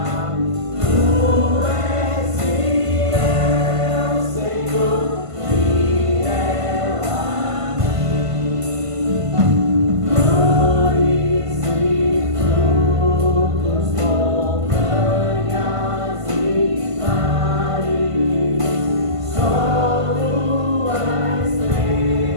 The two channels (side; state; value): left; late; 1.5 ms